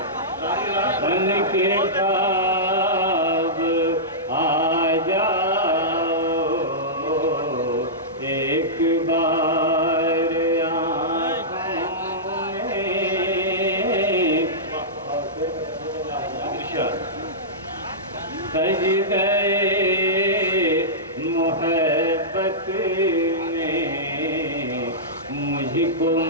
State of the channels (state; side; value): normal; both; correlation -0.15